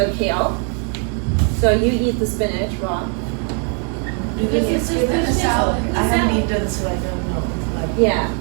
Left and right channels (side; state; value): left; quieter; 39.4 dB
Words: kale. So you eat the spinach raw. Do they This is give it the a salad. I haven't eaten, so I don't know. But Yeah,